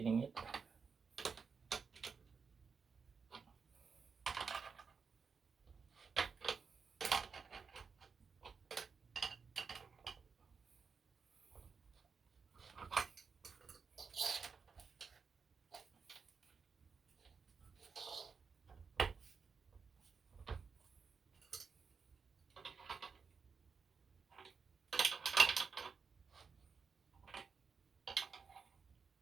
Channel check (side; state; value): left; quieter; 5.5 dB